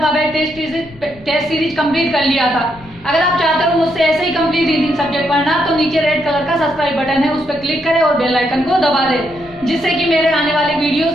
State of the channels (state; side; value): noise; left; rumble, 23 dB below the sound